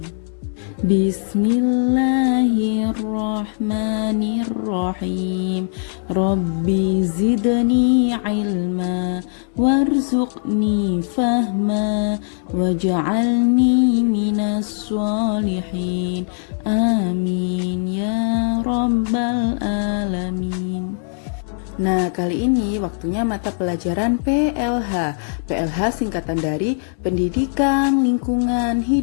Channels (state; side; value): silent; right; 66 dB below the other